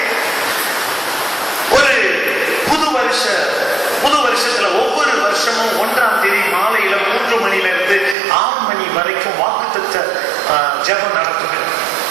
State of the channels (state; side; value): drops out; left; at 8.2 s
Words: ஒரு புது வருஷத்துல ஒவ்வொரு வருஷமும் 1ஆம் தேதி மாலையில 3 மணியிலிருந்து 6 மணி வரைக்கும் வாக்குத்தத்த ஜெபம் நடக்குது.